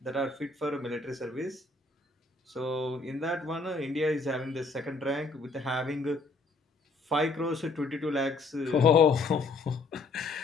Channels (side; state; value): right; quieter; 3.6 dB